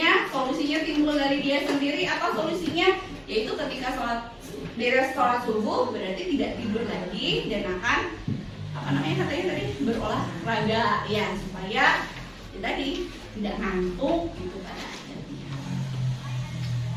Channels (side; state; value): both; identical; correlation 1.00